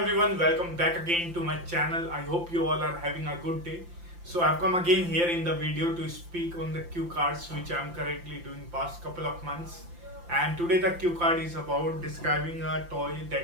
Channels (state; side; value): late; left; 5.8 ms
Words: welcome back again to my channel. I hope you all are having a good day. So I've come again here in the video to speak on the cue cards which I'm currently doing past couple of months. And today the cue card is about describing a toy